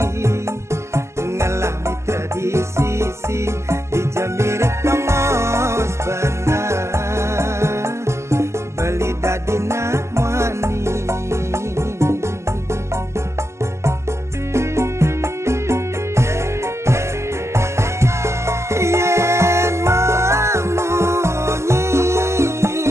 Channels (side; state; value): left; late; 0.13 ms